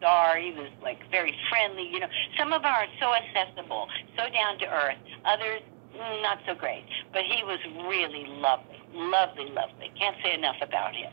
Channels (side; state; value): left; silent; 58 dB below the other